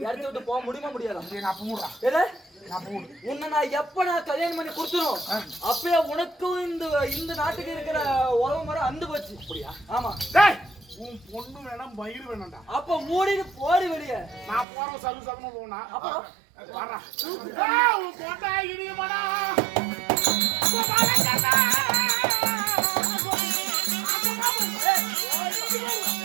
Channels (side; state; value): left; drops out; at 14.7 s